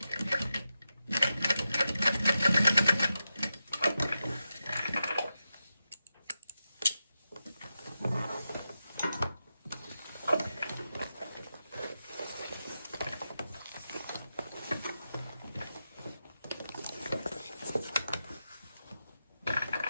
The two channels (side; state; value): both; inverted; correlation -0.89